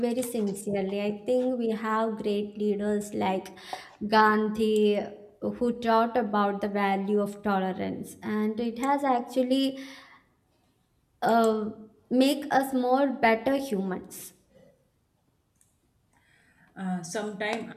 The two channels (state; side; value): identical; both; correlation 1.00